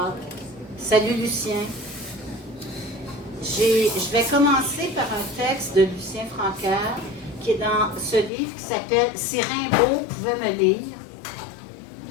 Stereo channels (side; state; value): right; drops out; at 8.3 s